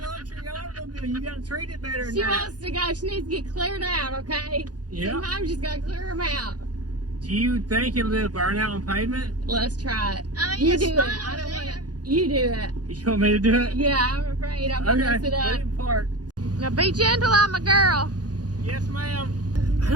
luxury automobile. You gotta treat it better than She that. wants to go. She needs to get cleared out, okay? Yeah. Sometimes you just gotta clear them out. Do you think it'll do a burnout on pavement? Let's try it. I mean, You it's do it. fine I don't over want there. it. You do it. You want me to do it? Yeah, I'm afraid I'm gonna mess it let up. it park. Now be gentle on my girl. Yes, ma'am. I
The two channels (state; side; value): late; left; 0.69 ms